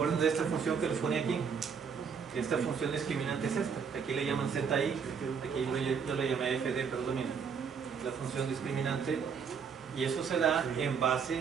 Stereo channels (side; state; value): left; quieter; 6.4 dB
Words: de esta función que les ponía aquí? Esta función discriminante es esta. Aquí le llaman ZI, aquí yo le llamé FD, pero domina. La función discriminante. Y eso se da en